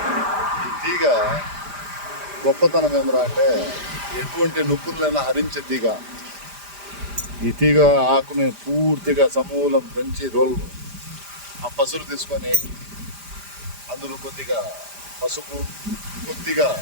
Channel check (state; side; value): late; left; 5.0 ms